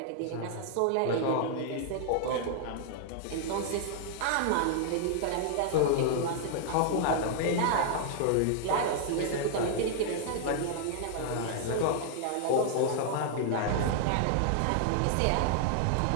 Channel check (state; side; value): different; both; correlation 0.00